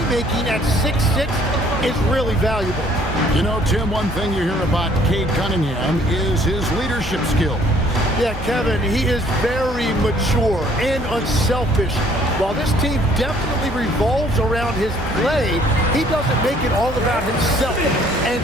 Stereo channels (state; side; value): normal; both; correlation 0.60